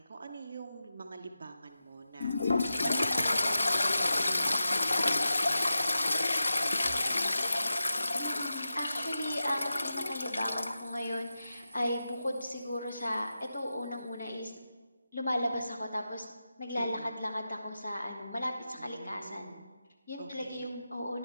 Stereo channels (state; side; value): inverted; both; correlation -0.92